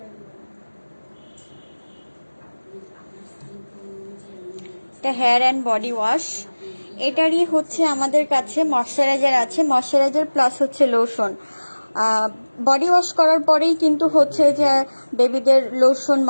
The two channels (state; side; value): inverted; both; correlation -1.00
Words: এটা হেয়ার অ্যান্ড বডি ওয়াশ। এটারই হচ্ছে আমাদের কাছে ময়শ্চারাইজার আছে, ময়শ্চারাইজার প্লাস হচ্ছে লোশন। বডি ওয়াশ করার পরেই কিন্তু হচ্ছে যে বেবিদের লোশন